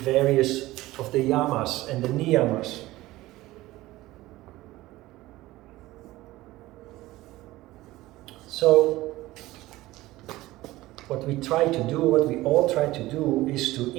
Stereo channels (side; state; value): left; quieter; 17.7 dB